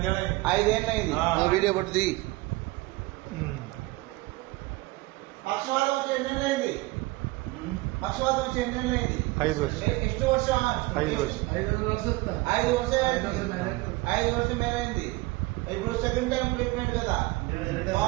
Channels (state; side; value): quieter; left; 21.4 dB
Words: 5 ఏళ్ళు అయింది. వీడియో పట్టుది. పక్షవాతం వచ్చి ఎన్ని ఏళ్ళు అయింది? పక్షవాతం వచ్చి ఎన్ని ఏళ్ళు అయింది? 5 ವರ್ಷ. ಎಷ್ಟು ವರ್ಷ? 5 ವರ್ಷ. 5 ವರ್ಷ మేలైంది. ఇప్పుడు సెకండ్ టైం ట్రీట్మెంట్ కదా,